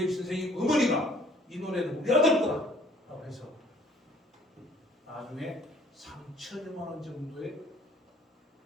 선생님 어머니가 이 노래는 우리 아들 거다라고 해서 나중에 3천여만 원 정도의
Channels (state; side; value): normal; both; correlation 0.57